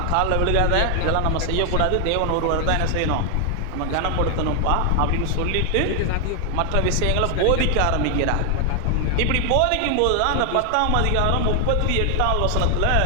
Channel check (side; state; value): both; different; correlation 0.00